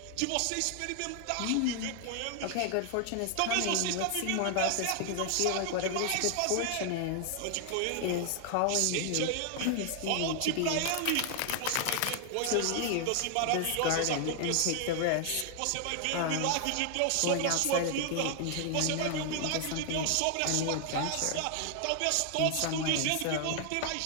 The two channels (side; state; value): both; different; correlation 0.00